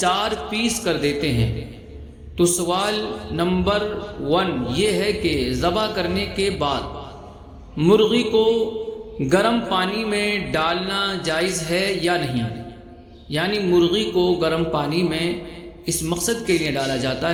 پیس کر دیتے ہیں۔ تو سوال نمبر 1 یہ ہے کہ ذبح کرنے کے بعد مرغی کو گرم پانی میں ڈالنا جائز ہے یا نہیں؟ یعنی مرغی کو گرم پانی میں اس مقصد کے لیے ڈالا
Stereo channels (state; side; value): identical; both; correlation 1.00